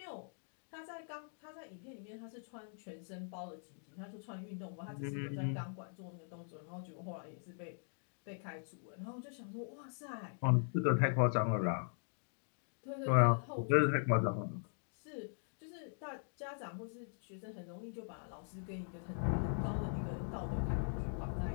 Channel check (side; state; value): right; silent; digital silence